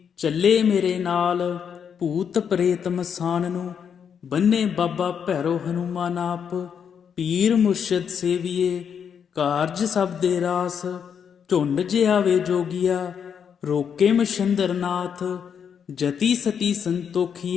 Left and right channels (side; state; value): right; quieter; 7.5 dB